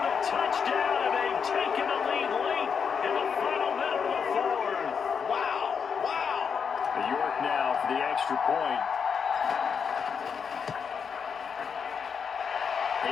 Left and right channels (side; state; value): right; quieter; 6.5 dB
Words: touchdown, and they've taken the lead late in the final minute of the fourth. Wow, wow. York now for the extra point.